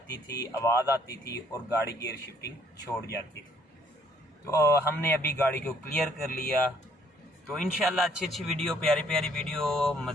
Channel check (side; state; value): both; normal; correlation 0.63